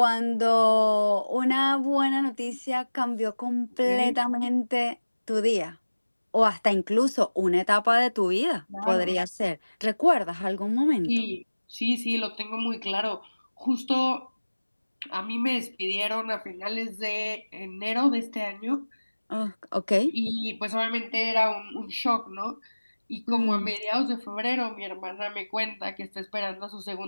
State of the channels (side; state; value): both; inverted; correlation -1.00